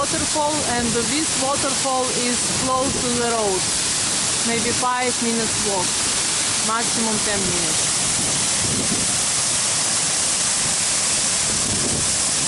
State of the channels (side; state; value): both; identical; correlation 1.00